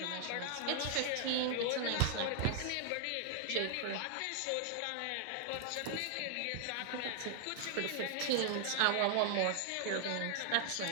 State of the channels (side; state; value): both; different; correlation 0.00